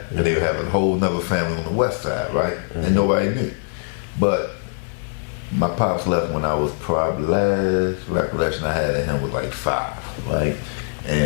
and they would have a whole nother family on the west side, right? And nobody knew. But my pops left when I was probably, last recollection I had of him was like 5, right?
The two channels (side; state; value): right; silent; digital silence